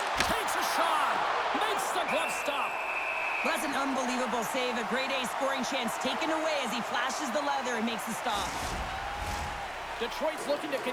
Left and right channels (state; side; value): identical; both; correlation 1.00